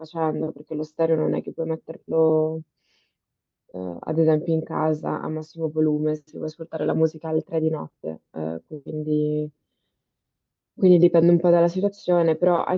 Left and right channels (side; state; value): both; identical; correlation 1.00